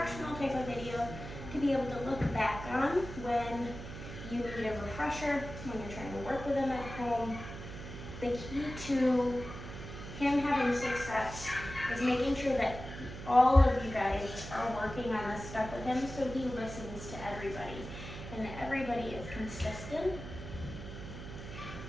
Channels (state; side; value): noise; right; hum, 10 dB below the sound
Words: type of video to be able to look back on when you need a refresher, when you're trying to work with him at home. The key to him having success is making sure that all of you guys are working on this stuff with him so he listens to everybody and everybody is consistent.